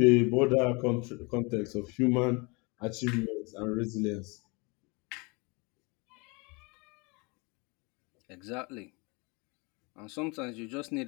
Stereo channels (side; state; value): right; quieter; 28.8 dB